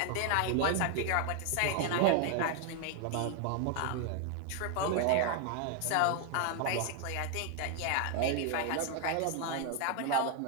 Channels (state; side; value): different; both; correlation 0.00